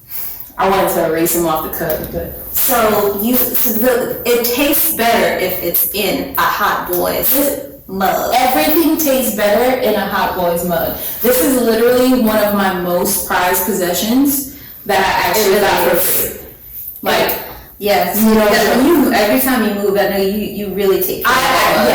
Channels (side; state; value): both; identical; correlation 1.00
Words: I wanted to erase him off the cup, but it tastes better if it's in a Hot Boys mug. Everything tastes better in a Hot Boys mug. This is literally one of my most prized possessions that I actually got for free. Like Yes, You know, when you every time you move, I know you really take care of it.